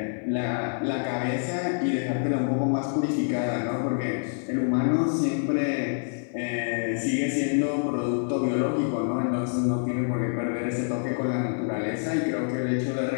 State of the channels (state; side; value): silent; right; 56 dB below the other